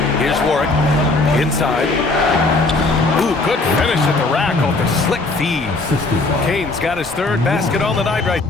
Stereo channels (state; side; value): quieter; right; 3.3 dB